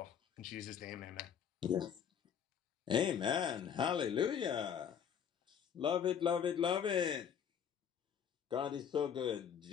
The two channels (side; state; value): right; quieter; 8.1 dB